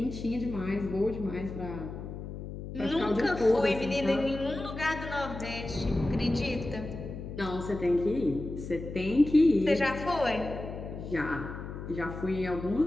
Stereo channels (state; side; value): noise; left; hum, 9 dB below the sound